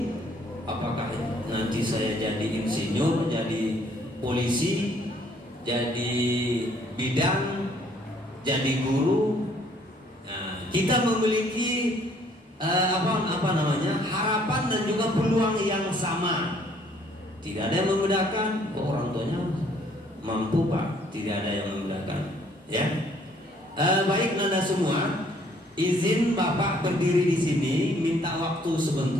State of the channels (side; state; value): both; normal; correlation 0.62